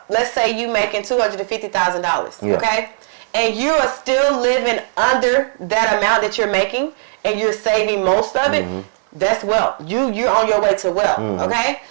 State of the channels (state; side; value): silent; left; digital silence